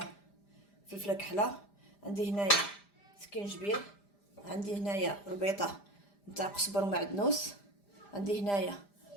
فلفله كحله، عندي هنايا سكينجبير، عندي هنايا ربيطه نتاع قزبر ومعدنوس، عندي هنايا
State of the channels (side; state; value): right; late; 5.0 ms